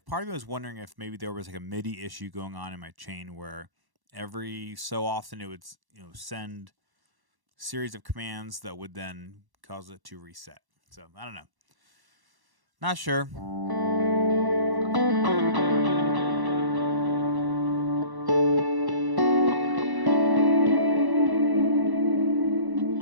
part of me was wondering if maybe there was like a MIDI issue going on in my chain where every so often it would send series of commands that would then cause it to reset. So I don't know. Not sure.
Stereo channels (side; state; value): left; late; 1.1 ms